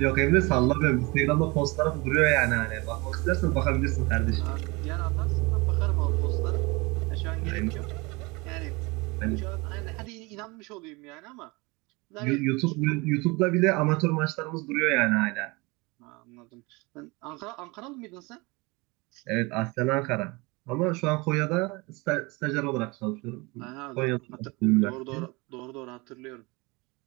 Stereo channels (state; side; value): quieter; left; 25.6 dB